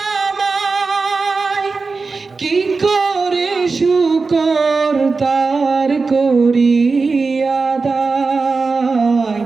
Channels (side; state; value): left; quieter; 4.2 dB